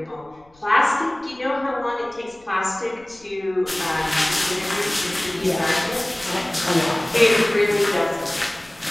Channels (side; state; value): left; noise; rumble, 29 dB below the sound